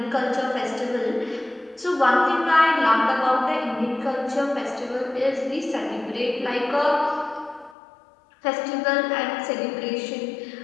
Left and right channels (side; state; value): right; drops out; at 7.8 s